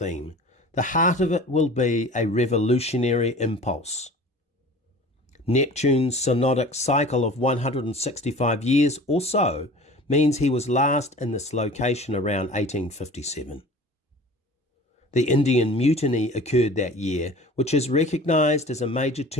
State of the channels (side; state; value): both; normal; correlation 0.42